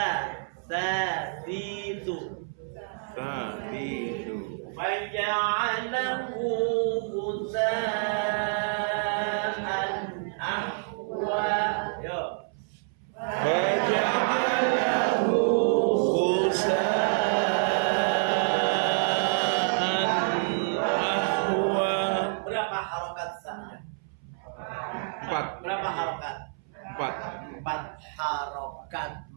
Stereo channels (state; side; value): silent; left; 59 dB below the other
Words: Tatitu. Faja'alahu ghutha'an ahwa. Yo. Faja'alahu ghutha'an ahwa. Berapa harokat sa? 4. Berapa harokat? 4. 4 harokat